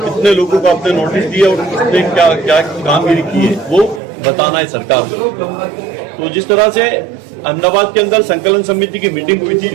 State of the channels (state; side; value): drops out; left; at 4.0 s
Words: लोगों को आपने नोटिस दिया और किसने क्या क्या कामगिरी की है वो बताना है सरकार को। तो जिस तरह से अहमदाबाद के अंदर संकलन समिति की मीटिंग हुई थी,